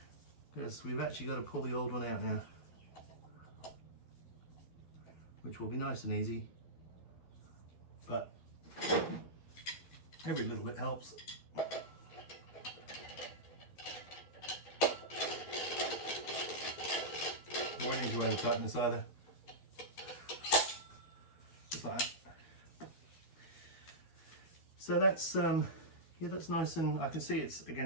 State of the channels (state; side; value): late; right; 12 ms